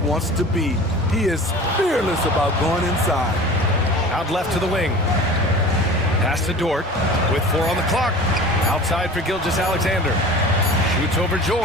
wants to be. He is fearless about going inside. Out left to the wing. Pass to Dort with 4 on the clock. Outside for Gilgeous-Alexander. Shoots over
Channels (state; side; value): normal; both; correlation 0.39